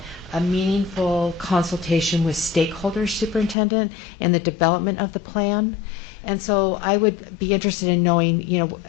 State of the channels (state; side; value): drops out; right; at 3.6 s